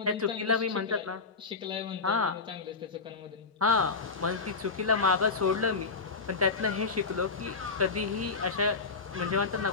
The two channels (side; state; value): right; quieter; 4.5 dB